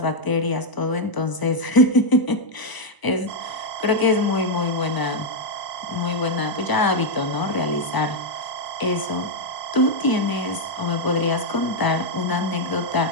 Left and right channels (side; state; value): right; late; 1.0 ms